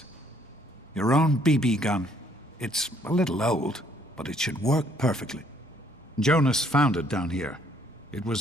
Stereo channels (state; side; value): normal; both; correlation 0.65